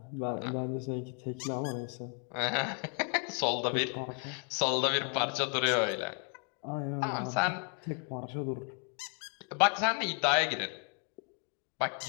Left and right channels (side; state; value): right; quieter; 35.1 dB